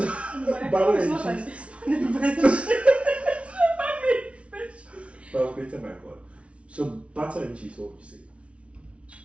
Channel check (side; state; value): left; late; 0.061 ms